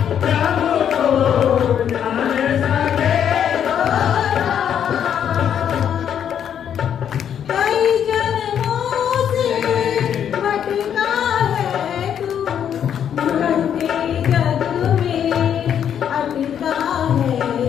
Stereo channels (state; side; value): quieter; right; 8.9 dB